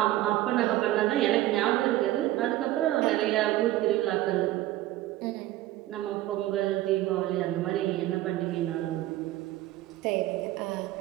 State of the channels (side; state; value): left; quieter; 15.4 dB